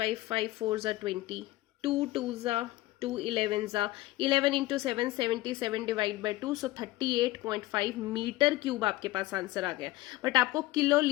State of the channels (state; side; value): quieter; right; 18.0 dB